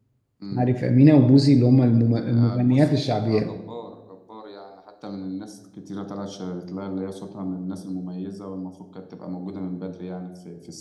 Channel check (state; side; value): identical; both; correlation 1.00